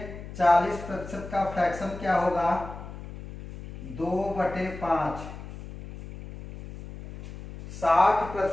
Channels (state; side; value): noise; left; hum, 12 dB below the sound